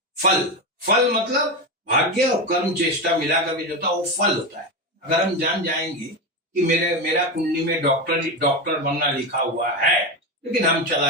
फल। फल मतलब भाग्य और कर्म चेष्टा मिलाकर के जो होता है वो फल होता है। अगर हम जान जाएंगे कि मेरा कुंडली में डॉक्टर बनना लिखा हुआ है, लेकिन हम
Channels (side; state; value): both; normal; correlation 0.16